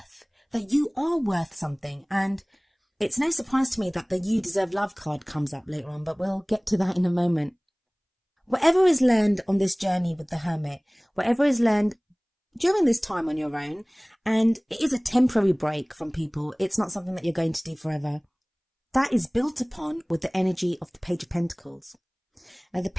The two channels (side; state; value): both; identical; correlation 1.00